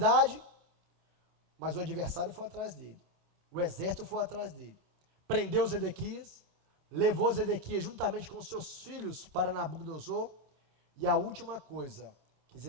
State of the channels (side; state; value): left; late; 26 ms